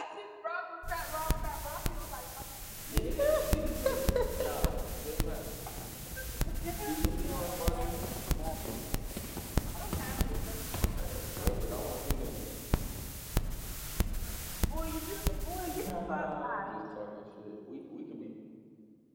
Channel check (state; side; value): identical; both; correlation 1.00